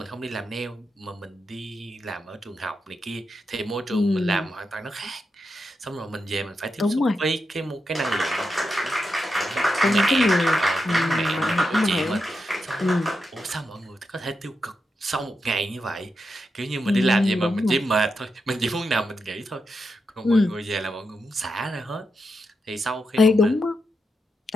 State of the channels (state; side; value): normal; both; correlation 0.86